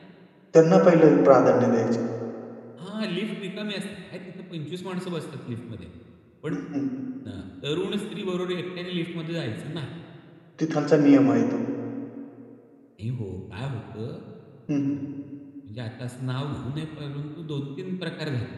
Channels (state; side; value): identical; both; correlation 1.00